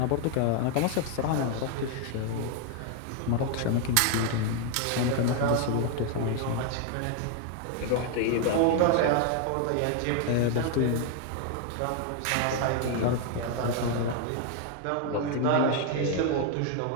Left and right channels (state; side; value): different; both; correlation 0.00